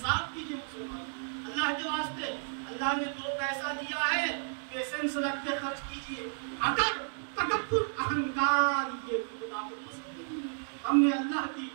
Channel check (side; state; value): left; silent; digital silence